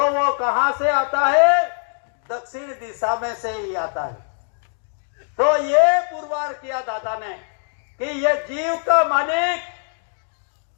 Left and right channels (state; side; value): silent; right; digital silence